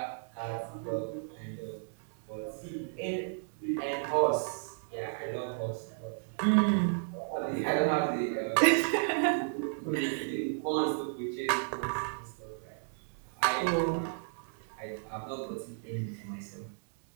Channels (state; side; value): silent; left; digital silence